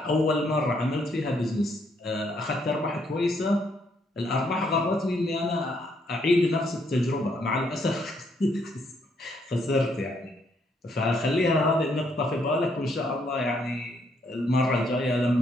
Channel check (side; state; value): both; normal; correlation 0.72